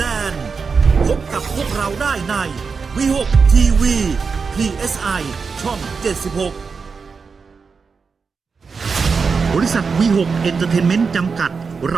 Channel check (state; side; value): quieter; left; 5.2 dB